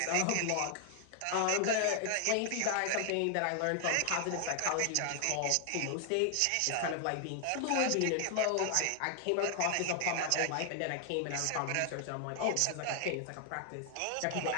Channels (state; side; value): different; both; correlation 0.00